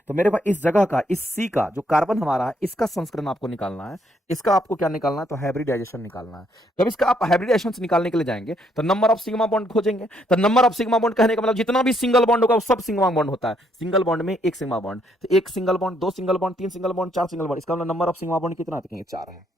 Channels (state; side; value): normal; both; correlation 0.71